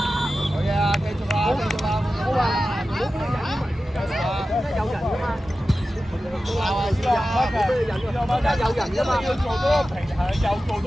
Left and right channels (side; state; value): both; normal; correlation 0.94